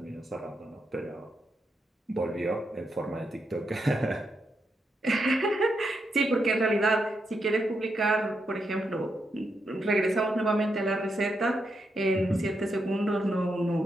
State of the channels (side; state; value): both; normal; correlation 0.83